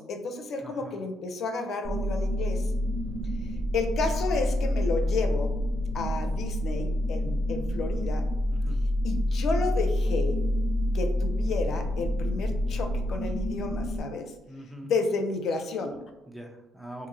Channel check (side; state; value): both; normal; correlation 0.82